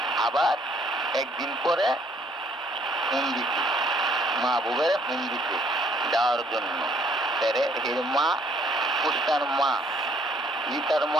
আবার একদিন পরে ফোন দিছে, মাহবুবের ফোন দিছে যাওয়ার জন্য। এর মা হুসনার মা, লিতার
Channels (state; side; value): normal; both; correlation 0.63